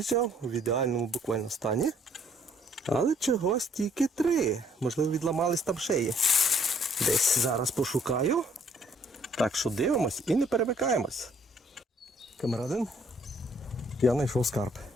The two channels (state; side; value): normal; both; correlation 0.63